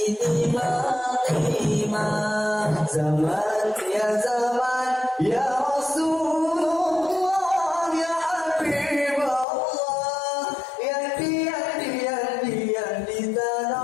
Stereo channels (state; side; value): drops out; right; at 9.5 s